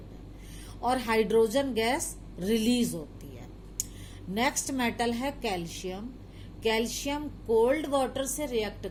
है और हाइड्रोजन गैस रिलीज होती है। नेक्स्ट मेटल है कैल्शियम। कैल्शियम कोल्ड वाटर से रिएक्ट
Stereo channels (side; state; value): both; identical; correlation 1.00